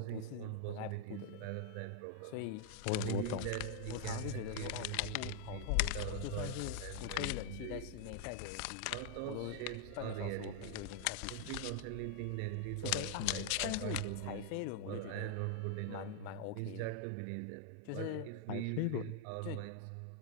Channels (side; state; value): both; different; correlation 0.00